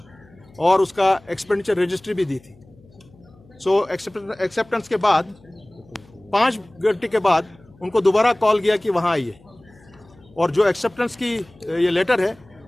और उसका एक्सपेंडिचर रजिस्ट्री भी दी थी। सो एक्सेप्टेंस के बाद 5 घंटे के बाद उनको दोबारा कॉल किया कि वहाँ आइए, और जो एक्सेप्टेंस की ये लेटर है,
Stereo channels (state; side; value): noise; left; hum, 27 dB below the sound